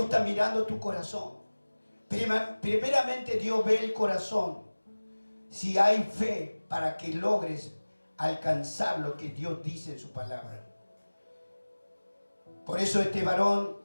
está mirando tu corazón. Primeramente Dios ve el corazón. Si hay fe para que logres alcanzar lo que Dios dice en su palabra. Por eso este varón,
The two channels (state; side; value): inverted; both; correlation -1.00